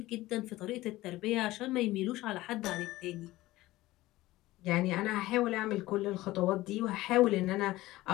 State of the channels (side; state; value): right; quieter; 17.6 dB